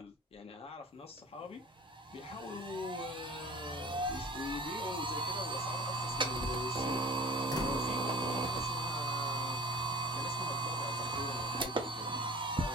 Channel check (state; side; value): normal; both; correlation 0.42